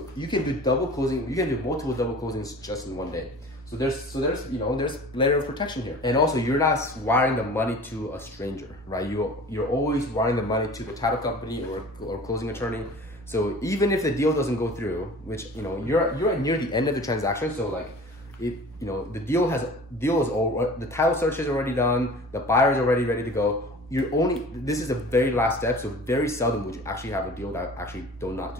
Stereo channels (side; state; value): both; normal; correlation 0.42